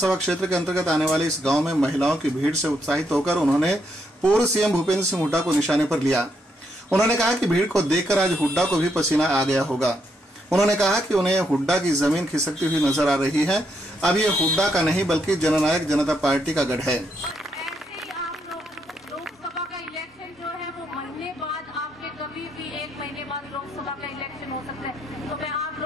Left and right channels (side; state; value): both; normal; correlation 0.77